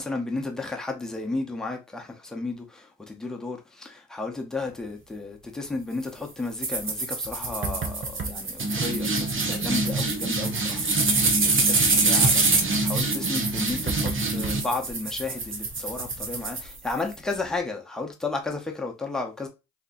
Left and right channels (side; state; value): both; normal; correlation 0.33